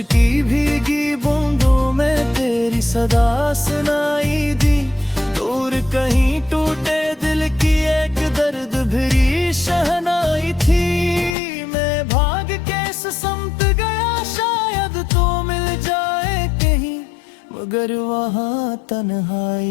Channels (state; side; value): drops out; right; at 11.4 s